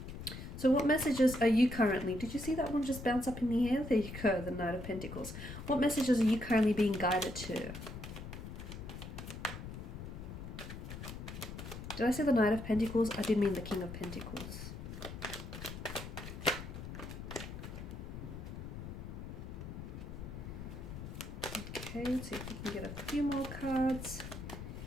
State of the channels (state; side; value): noise; left; rumble, 9 dB below the sound